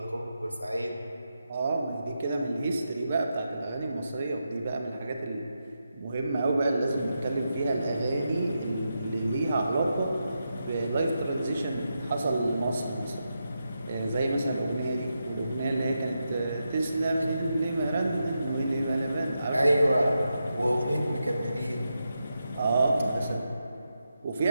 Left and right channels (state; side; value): inverted; both; correlation -0.87